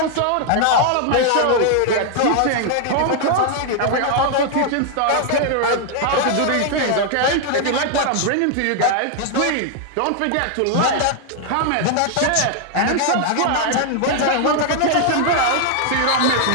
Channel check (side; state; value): both; different; correlation 0.00